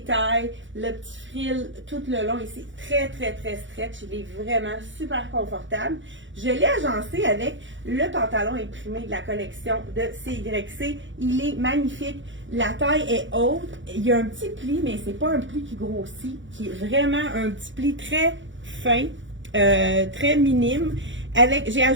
le petit frill tout le long ici, très stretch, il est vraiment super confortable. Je l'ai agencé avec le pantalon imprimé de la collection de CYC, il est magnifique, la taille est haute, il y a un petit pli, mais c'est pas un pli qui grossit, qui est vraiment un petit pli très fin, très minime, j'ai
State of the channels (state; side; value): late; left; 0.55 ms